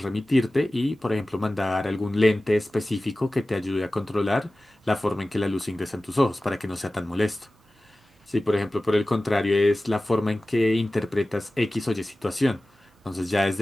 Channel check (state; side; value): normal; both; correlation 0.96